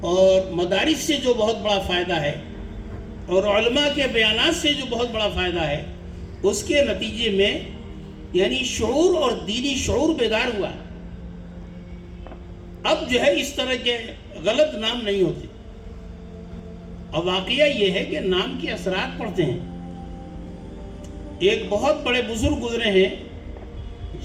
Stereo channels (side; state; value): both; identical; correlation 1.00